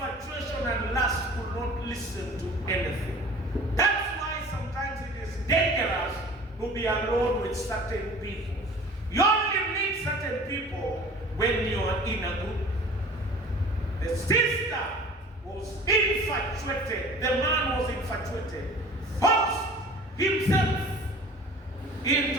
and lust could not listen to anything. That's why sometimes it is dangerous to be alone with certain people. You only meet certain people when you are in a group. The sister was infatuated. The man was infatuated. Forced himself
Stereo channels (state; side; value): normal; both; correlation 0.44